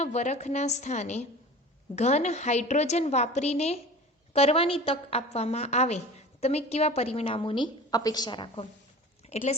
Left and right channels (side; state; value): both; normal; correlation 0.38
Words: વરખના સ્થાને ઘન હાઇડ્રોજન વાપરીને કરવાની તક આપવામાં આવે, તમે કેવા પરિણામોની અપેક્ષા રાખો. એટલે